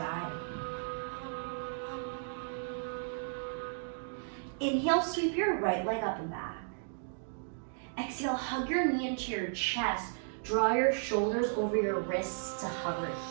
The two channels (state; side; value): silent; left; digital silence